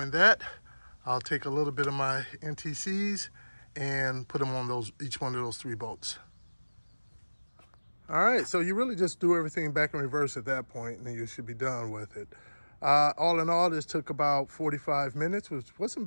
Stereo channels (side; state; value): both; inverted; correlation -1.00